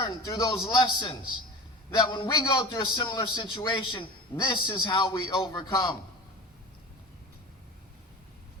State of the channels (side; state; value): both; normal; correlation 0.34